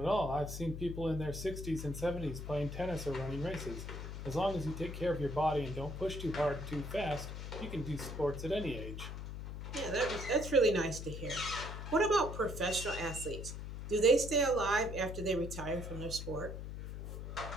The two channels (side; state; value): left; noise; hum, 7 dB below the sound